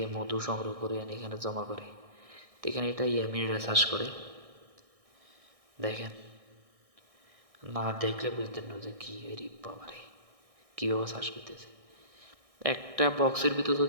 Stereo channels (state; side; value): late; left; 1.6 ms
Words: মধু সংগ্রহ করে আনি এখানে জমা করে। তো এখানে এটা ইয়ামিরা চাষ করে। দেখেন, না দেখলে বুঝতেন না যে কি এরি বাবারে, কীভাবে চাষ করতেছে। একটা বক্সের ভিতর